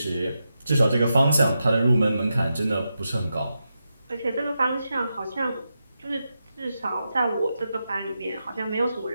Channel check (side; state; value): both; inverted; correlation -0.88